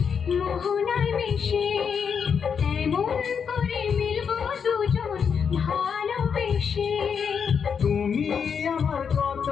মোহনায় মিশে, তেমন করে মিলবো দুজন ভালোবেসে। তুমি আমার কত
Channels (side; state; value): right; quieter; 6.7 dB